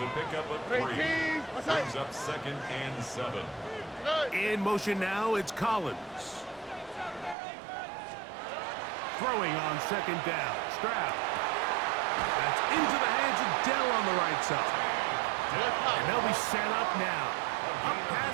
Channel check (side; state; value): left; drops out; at 7.4 s